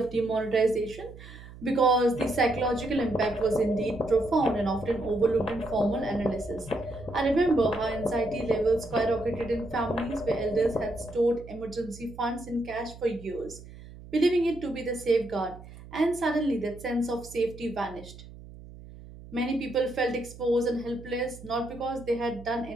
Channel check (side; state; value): right; noise; hum, 17 dB below the sound